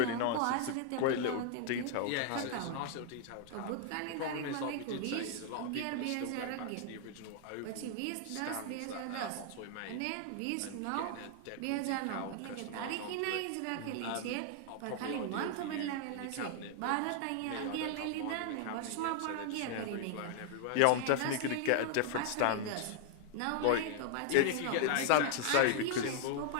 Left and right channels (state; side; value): different; both; correlation 0.00